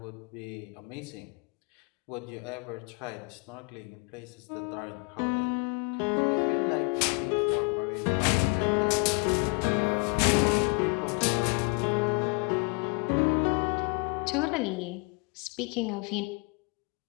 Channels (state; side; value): quieter; right; 31.9 dB